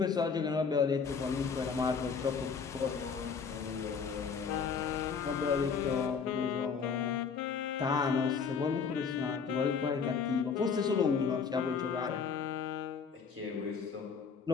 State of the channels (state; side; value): quieter; right; 5.9 dB